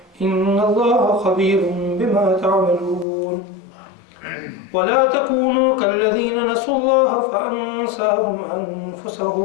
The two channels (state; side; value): drops out; right; at 3.1 s